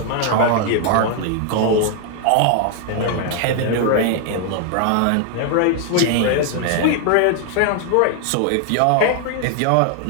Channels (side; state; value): both; different; correlation 0.00